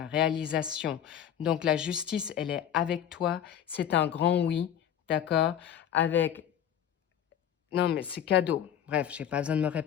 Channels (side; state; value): right; quieter; 9.7 dB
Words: réalisation. Donc la justice, elle est avec toi, c'est un grand oui, d'accord, non, mais c'est cadeau. Bref, j'ai pas besoin de me